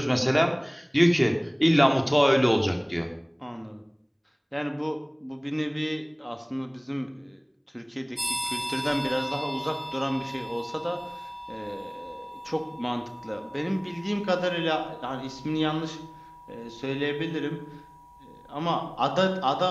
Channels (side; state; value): both; identical; correlation 1.00